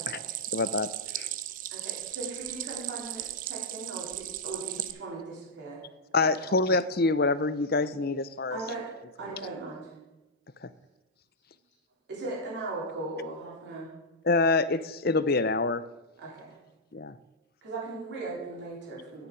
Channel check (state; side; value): normal; both; correlation -0.06